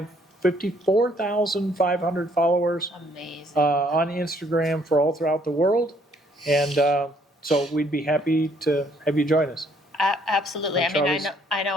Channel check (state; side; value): normal; both; correlation 0.65